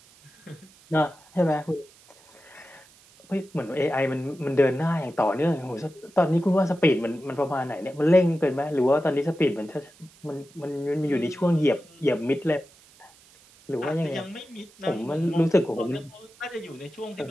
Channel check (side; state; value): right; noise; hiss, 27 dB below the sound